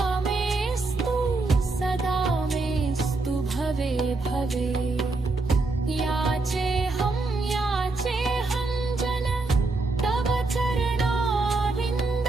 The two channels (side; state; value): left; quieter; 3.4 dB